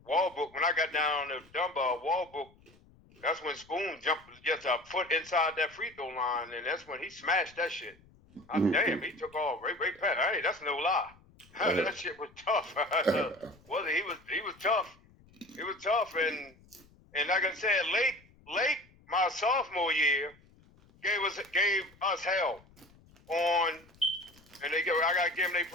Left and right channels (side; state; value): left; noise; rumble, 28 dB below the sound